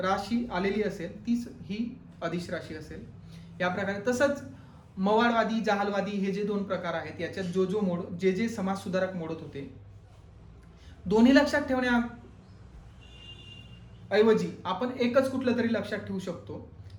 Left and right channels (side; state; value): both; identical; correlation 1.00